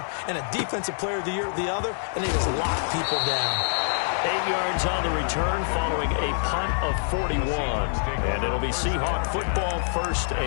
and a Defensive Player of the Year at the other, and they just locked people down. 8 yards on the return following a punt of 41. And it'll be Seahawk football, 1st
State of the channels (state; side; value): silent; right; digital silence